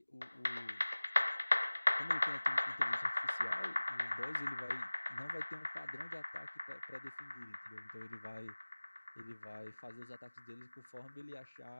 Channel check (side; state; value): both; inverted; correlation -1.00